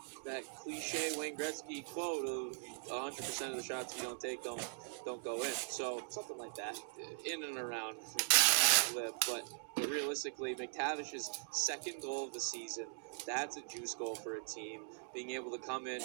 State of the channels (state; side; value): silent; left; digital silence